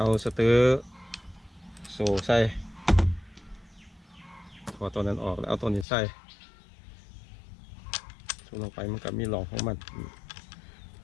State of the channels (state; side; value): drops out; right; at 5.9 s